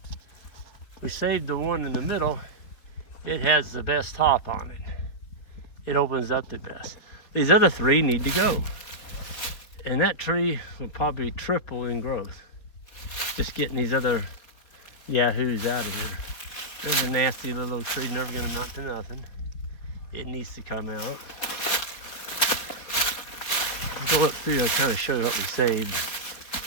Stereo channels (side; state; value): right; late; 4.4 ms